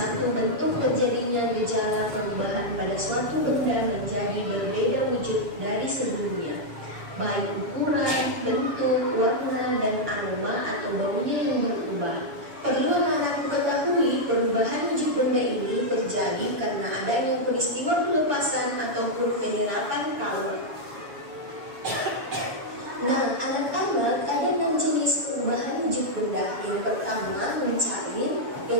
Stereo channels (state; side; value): late; left; 7.2 ms